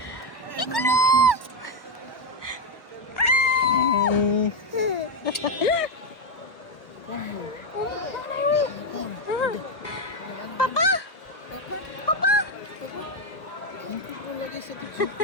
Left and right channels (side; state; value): right; late; 1.0 ms